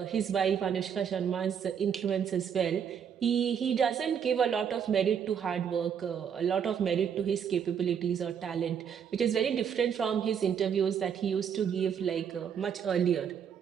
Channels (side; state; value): left; quieter; 7.8 dB